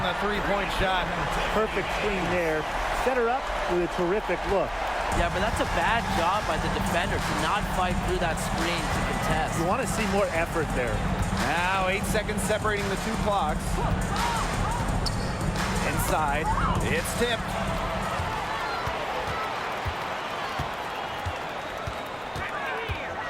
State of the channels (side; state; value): both; identical; correlation 1.00